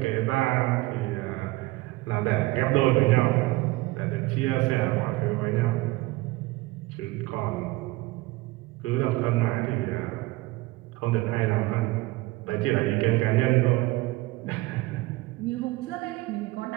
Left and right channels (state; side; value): quieter; left; 20.2 dB